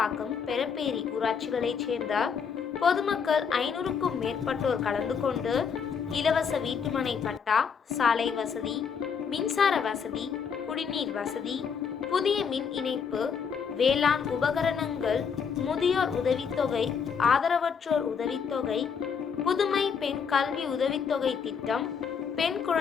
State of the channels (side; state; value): right; quieter; 6.5 dB